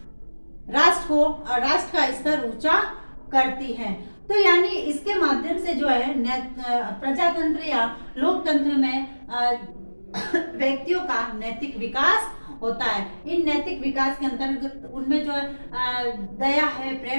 राष्ट्र का स्तर ऊंचा करती है। तो यानी इसके माध्यम से जो है प्रजातंत्र या लोकतंत्र में व्यक्तियों का नैतिक विकास होता है। इन नैतिक विकास के अंतर्गत उनमें जो दया है,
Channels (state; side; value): inverted; both; correlation -1.00